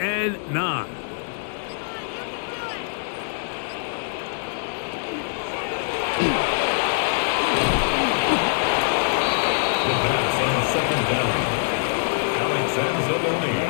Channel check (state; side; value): silent; right; digital silence